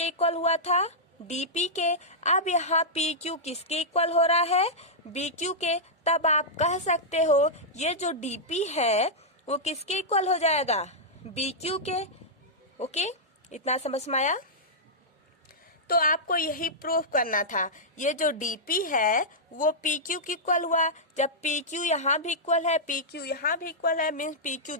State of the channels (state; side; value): normal; both; correlation -0.10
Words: इक्वल हुआ था, DP के। अब यहाँ PQ किसके इक्वल हो रहा है, BQ के। तब आप कह सकते हो ये जो DP है वो किसके इक्वल हो जाएगा, BQ के। ओके, इतना समझ में आया। तो आपको यही प्रूफ करना था, ये जो DP है वो PQ की इक्वल हुआ। जब PQ यहाँ भी इक्वल है, PQ यहाँ भी इक्वल है, मीन्स PQ